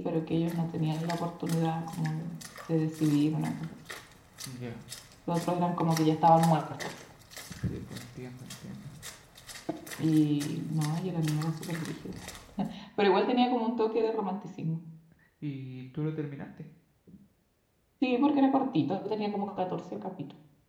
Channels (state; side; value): identical; both; correlation 1.00